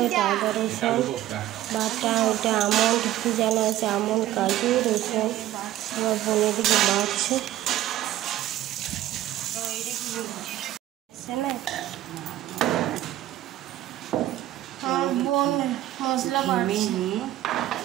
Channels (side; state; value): left; quieter; 14.1 dB